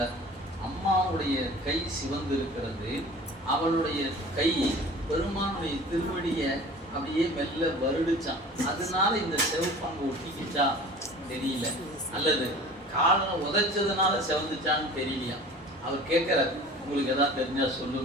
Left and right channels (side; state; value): both; normal; correlation 0.42